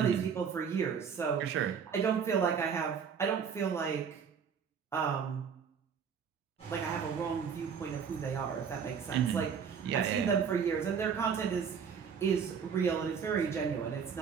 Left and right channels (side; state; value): left; quieter; 6.8 dB